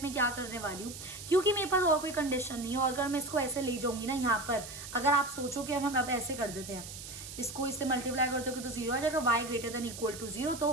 में क्या करने वाली हूँ, क्योंकि मेरे पास और कोई कंडीशन नहीं है। और अगर मैं इसको ऐसे ले जाऊंगी ना यहाँ पर, अगर आप सोचो कि हम अब ऐसे कर देते हैं, इसको इससे मल्टीप्लाई करते हो तो 0 आ जाएगा, y greater than equal to 0,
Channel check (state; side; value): noise; right; hiss, 11 dB below the sound